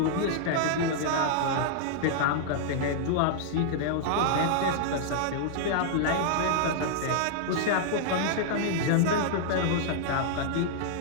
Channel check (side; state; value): both; different; correlation -0.01